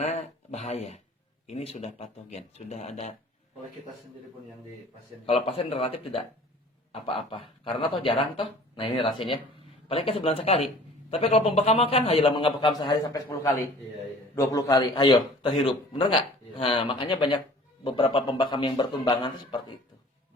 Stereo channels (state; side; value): normal; both; correlation 0.48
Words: bahaya. Ini sudah patogen, sudah ada. Oleh kita sendiri pun yang di pasien. Kalau pasien relatif tidak apa-apa, karena toh jarang toh. Nah ini rasanya, paling kan sebulan sekali. Tapi kalau pembekaman kan, ayolah mengabekam sehari sampai 10 kali, Iya. 20 kali, ayo terhirup, bener nggak? Iya. Nah makanya banyak beberapa pembekam yang bertumbangan itu seperti itu